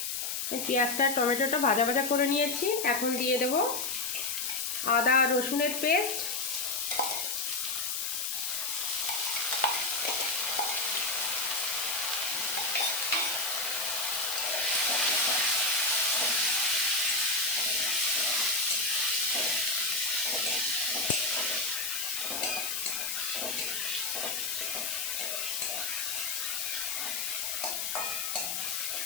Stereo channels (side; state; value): left; noise; hiss, 2 dB below the sound